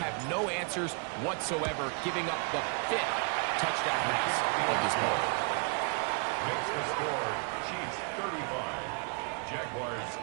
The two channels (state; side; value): quieter; left; 36.9 dB